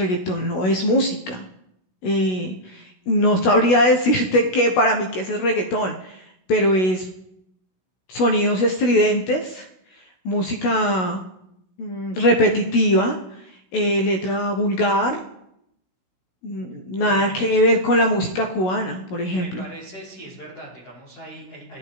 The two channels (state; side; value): late; right; 16 ms